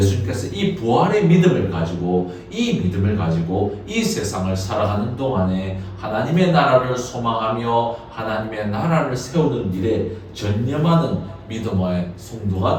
이 부활의 믿음을 가지고 이 세상을 살아가는 동안에 하나님의 나라를 소망하며 하나님의 나라를 세우는 일에 전념하는 믿음의 성도가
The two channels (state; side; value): identical; both; correlation 1.00